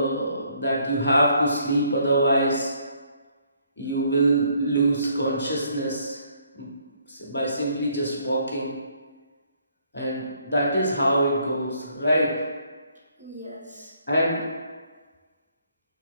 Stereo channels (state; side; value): inverted; both; correlation -0.67